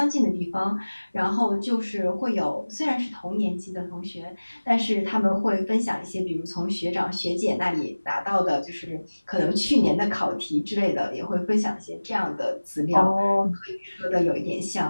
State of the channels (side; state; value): both; inverted; correlation -1.00